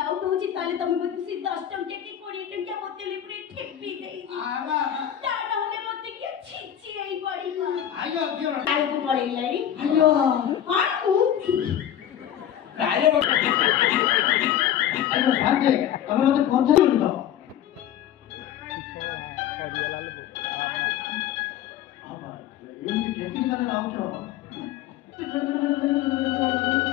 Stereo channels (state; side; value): quieter; right; 10.6 dB